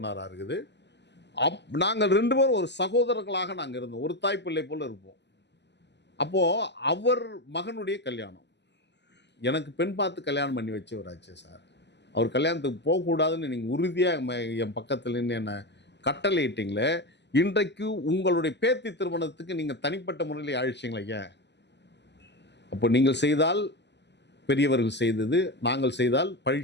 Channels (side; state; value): right; late; 0.50 ms